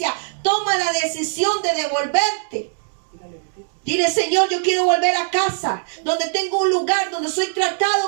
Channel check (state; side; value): silent; left; 65 dB below the other